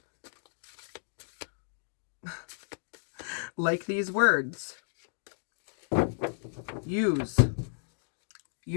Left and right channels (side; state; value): right; silent; 56 dB below the other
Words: Like these words. Use